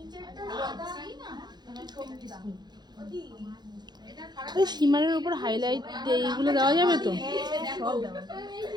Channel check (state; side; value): late; left; 0.21 ms